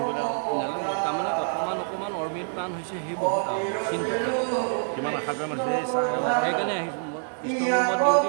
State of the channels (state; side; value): silent; left; digital silence